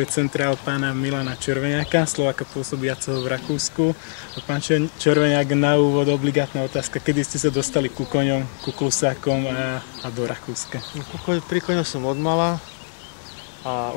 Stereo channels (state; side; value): silent; right; 64 dB below the other